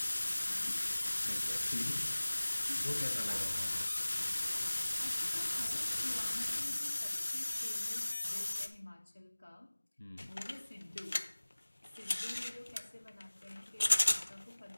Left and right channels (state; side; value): inverted; both; correlation -1.00